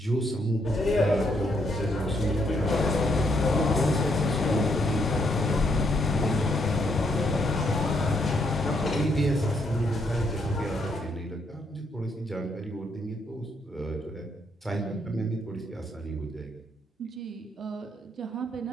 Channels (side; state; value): both; normal; correlation 0.74